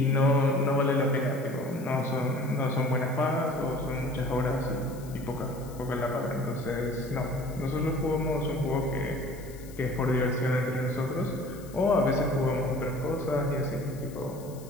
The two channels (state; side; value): noise; left; hiss, 21 dB below the sound